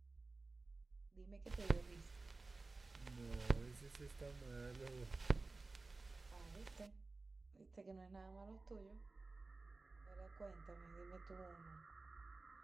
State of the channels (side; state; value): left; quieter; 3.6 dB